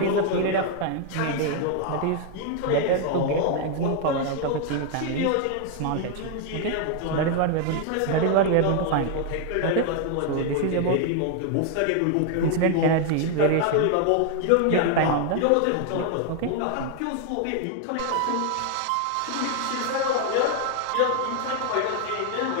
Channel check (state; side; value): different; both; correlation 0.00